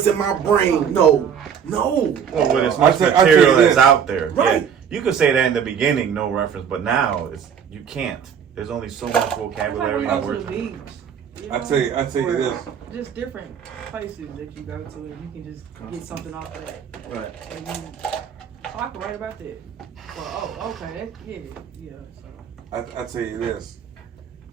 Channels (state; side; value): quieter; left; 7.8 dB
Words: in my brain. No. Well, with as much material that's out there. Right. Yeah, you could say that in the beginning, no reference, but now you can't. There's only so much vocabulary and words. I tell you this. Just different places that you go to, and you can just get something off of that. Right. And I can write about that. Well, okay, yeah. So. I tell you this.